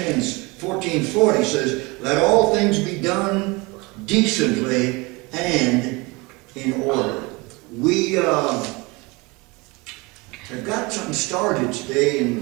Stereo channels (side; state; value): left; quieter; 25.6 dB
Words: says, let all things be done decently and in order. We have got something started today